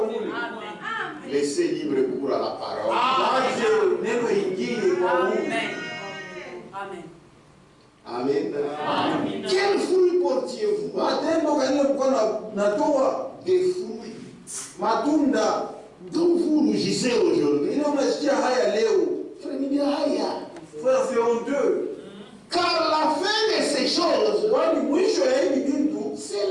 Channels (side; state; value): both; identical; correlation 1.00